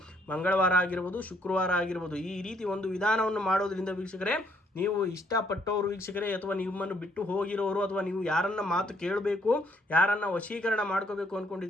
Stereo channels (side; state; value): both; normal; correlation 0.68